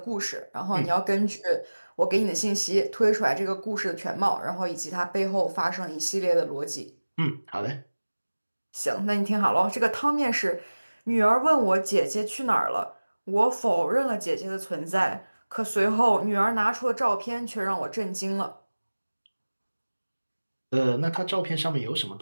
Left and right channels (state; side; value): inverted; both; correlation -1.00